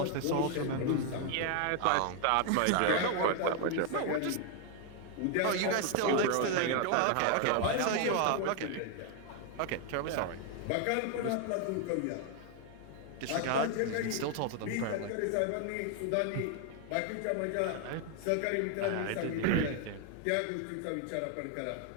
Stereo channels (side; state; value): both; different; correlation 0.00